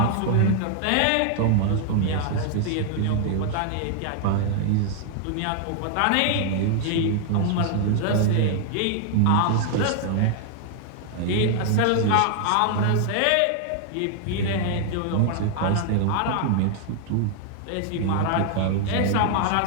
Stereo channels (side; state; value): both; different; correlation 0.00